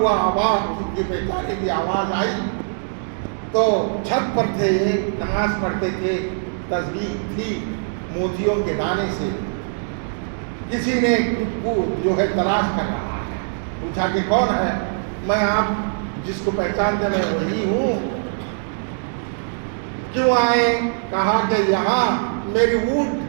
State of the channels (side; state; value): left; silent; digital silence